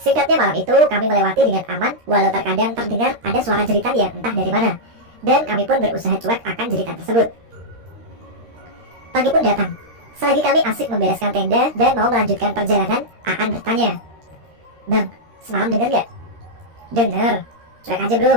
Singkatnya malam itu kami melewati dengan aman, walau terkadang terdengar ada suara jeritan yang entah dari mana. Dan kami pun berusaha cuek akan jeritan tersebut. Pagi pun datang. Selagi kami asik membereskan tenda dan mau melanjutkan perjalanan, Aan bertanya, Bang, semalam denger gak? Denger. Cuek aja bro,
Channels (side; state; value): left; late; 13 ms